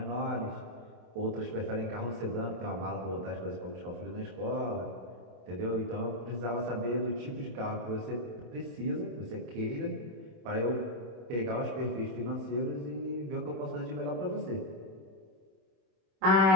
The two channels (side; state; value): left; late; 27 ms